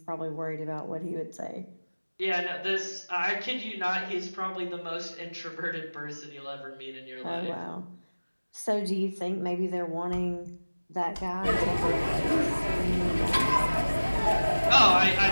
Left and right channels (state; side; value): inverted; both; correlation -1.00